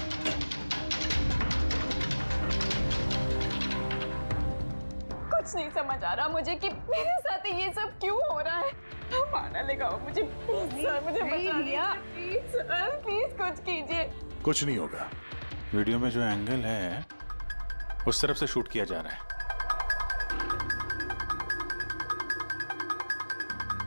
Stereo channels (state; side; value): inverted; both; correlation -1.00